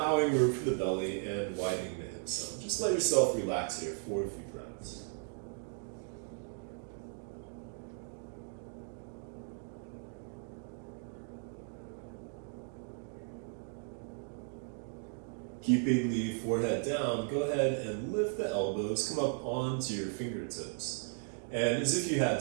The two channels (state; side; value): silent; left; 54 dB below the other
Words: room for the belly and widening the hips some. Just let yourself relax here for a few breaths. Keeping the forehead down, go ahead and lift the elbows, come up onto your fingertips. And as if you had